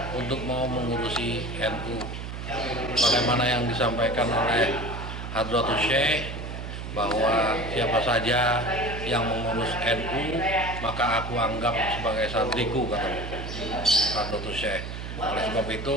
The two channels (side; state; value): right; noise; hum, 7 dB below the sound